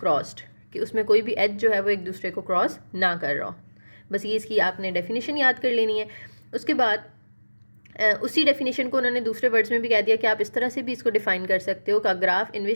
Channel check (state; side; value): inverted; both; correlation -1.00